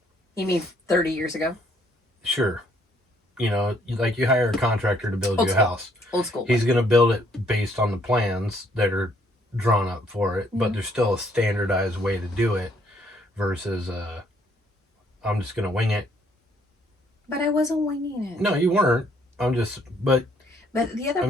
You mean 30 years ago? Sure. You know, like you hire a contractor to build Old you a school. house. Old school. He's going to build it based on the plans that are drawn up for it, but Mhm. there's still a standardized way to do it versus I'm just going to wing it. But I wasn't winging it. No, you weren't. But the other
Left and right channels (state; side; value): normal; both; correlation 0.67